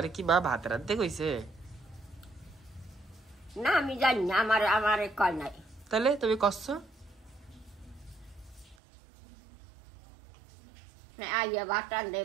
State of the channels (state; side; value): drops out; left; at 8.8 s